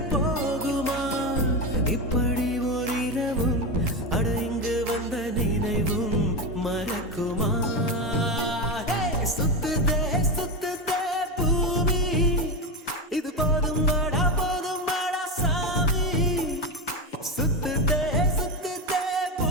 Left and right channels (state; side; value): normal; both; correlation 0.16